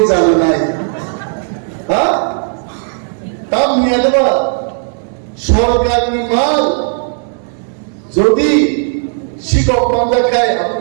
জানে নাই হ্যাঁ তাম নিয়ে দেবা সরকারি মাল যদি শিক্ষক মামলা খায়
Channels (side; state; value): left; silent; 67 dB below the other